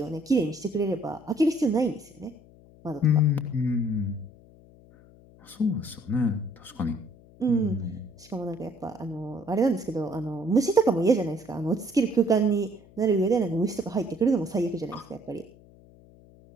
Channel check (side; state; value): left; noise; hum, 24 dB below the sound